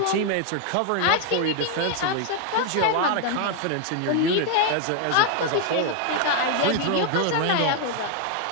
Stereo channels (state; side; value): different; both; correlation 0.00